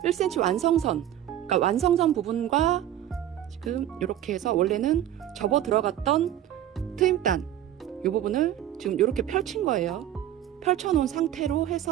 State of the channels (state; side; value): quieter; left; 11.8 dB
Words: 1cm 완성선, 그러니까 완성선 부분과 지금 이렇게 해서 원래는 접어 들어갔던 트임단 이 부분을 지금 이렇게 펼친 거예요. 펼쳐 놓은 상태로